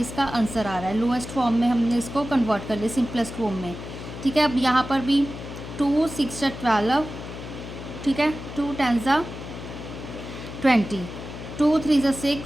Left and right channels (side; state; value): left; noise; hum, 10 dB below the sound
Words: आंसर आ रहा है। लोएस्ट फॉर्म में हमने इसको कन्वर्ट कर लिया सिंपलेस्ट फॉर्म में। ठीक है, अब यहाँ पर भी 2 6 12, ठीक है, 2 10 20, 2 3